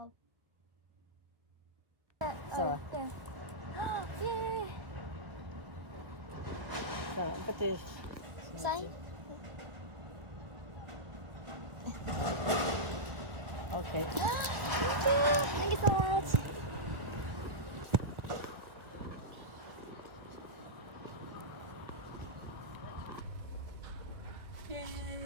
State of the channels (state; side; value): late; left; 1.4 ms